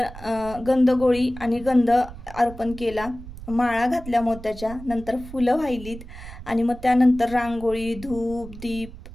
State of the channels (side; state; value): right; noise; rumble, 14 dB below the sound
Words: गंधगोळी आणि गंध अर्पण केला, माळा घातल्या मोत्याच्या, नंतर फुलं वाहिलीत आणि मग त्यानंतर रांगोळी, धूप, दीप,